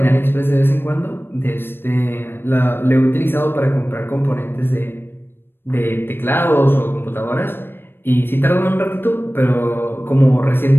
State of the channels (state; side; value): late; right; 0.10 ms